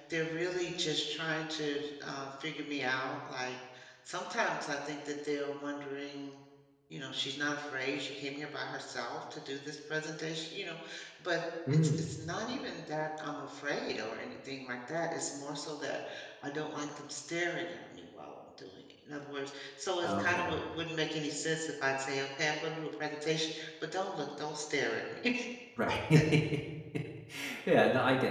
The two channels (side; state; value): both; identical; correlation 1.00